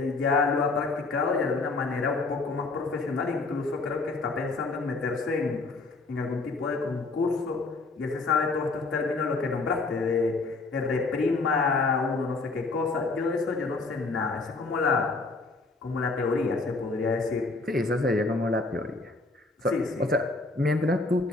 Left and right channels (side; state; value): right; quieter; 3.6 dB